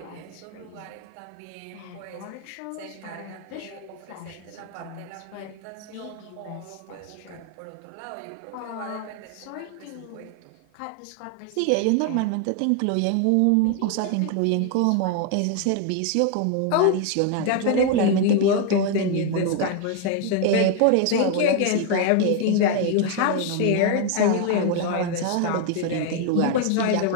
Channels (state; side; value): different; both; correlation 0.01